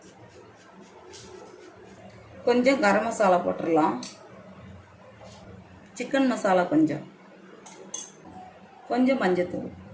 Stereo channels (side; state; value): both; identical; correlation 1.00